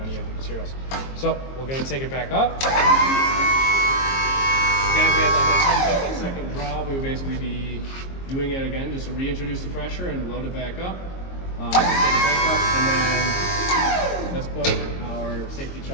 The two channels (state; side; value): late; right; 22 ms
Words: of the materials. So we're going to take it back up. Again, if we had like second draw, we would basically be doing it again just to reintroduce the pressure and load it back up. Take it back up, and then let's put our safety